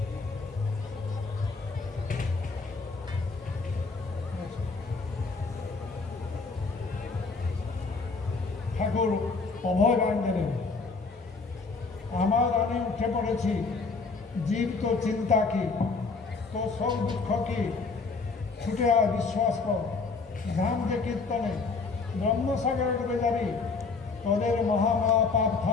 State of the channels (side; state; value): right; quieter; 4.3 dB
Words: ঠাকুর অভয় বাণ দিলেন আমার আনে উঠে পড়েছি জীব তো চিন্তা কি তো সব দুঃখ কি ছুটে আয় বিশ্বাস কর ধাম যে কীর্তনে ব্রহ্মসাগরে ডুবে যাবি তোদের মহামহা পাপ